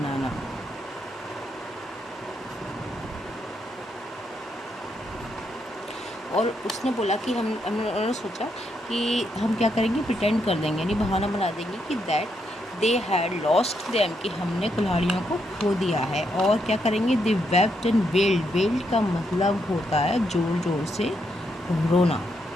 और उसने बोला कि उन्होंने सोचा कि हम क्या करेंगे, प्रिटेंड कर देंगे, यानी बहाना बना देंगे कि that they had lost them, कि हमने कुल्हाड़ियों को खो दिया है। और क्या करेंगे, दे वेप्ट एंड वेल्ड। वेल्ड का मतलब होता है जोर जोर से रोना।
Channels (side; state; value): both; normal; correlation 0.79